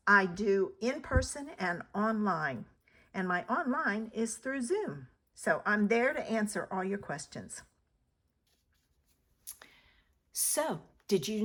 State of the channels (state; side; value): identical; both; correlation 1.00